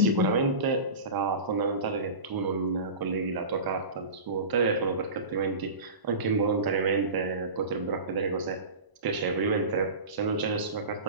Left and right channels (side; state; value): left; late; 1.0 ms